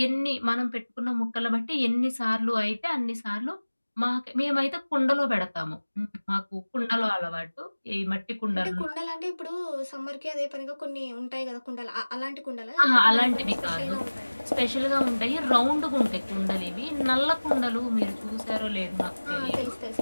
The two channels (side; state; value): both; inverted; correlation -1.00